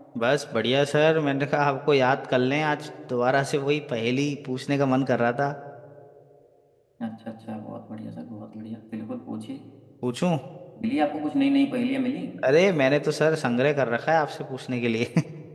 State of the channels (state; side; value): identical; both; correlation 1.00